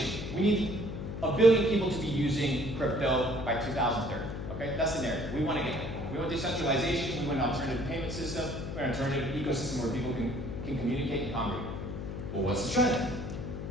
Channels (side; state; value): left; noise; hum, 6 dB below the sound